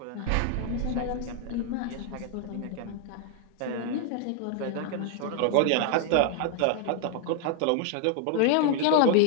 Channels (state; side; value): different; both; correlation 0.00